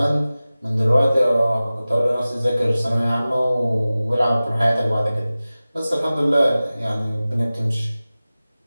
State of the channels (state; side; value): inverted; both; correlation -0.97